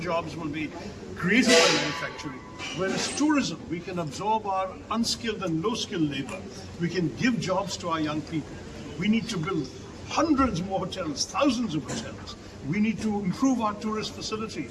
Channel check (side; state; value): both; identical; correlation 1.00